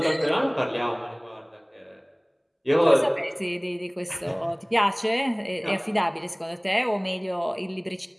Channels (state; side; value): identical; both; correlation 1.00